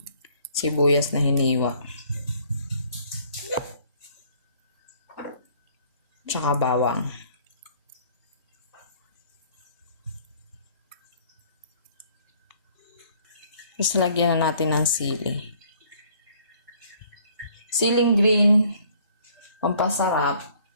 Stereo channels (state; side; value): inverted; both; correlation -0.59